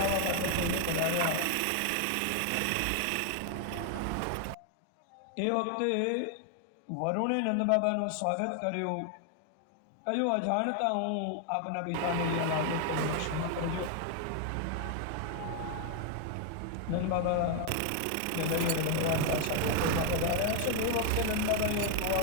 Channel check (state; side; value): different; both; correlation 0.00